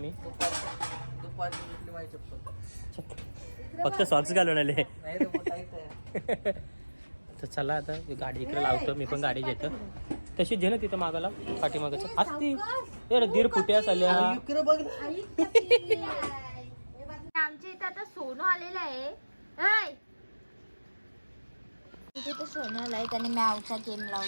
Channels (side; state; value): both; inverted; correlation -1.00